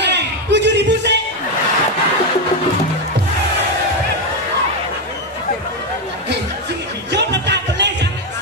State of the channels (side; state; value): both; normal; correlation 0.08